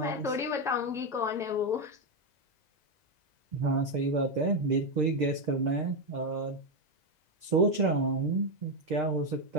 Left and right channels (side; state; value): left; late; 2.0 ms